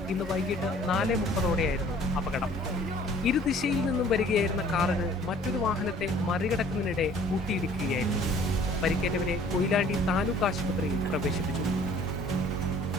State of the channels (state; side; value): normal; both; correlation 0.53